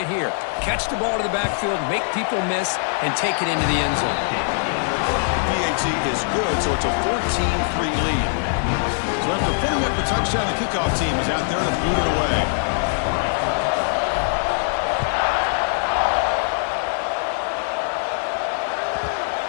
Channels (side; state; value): right; silent; digital silence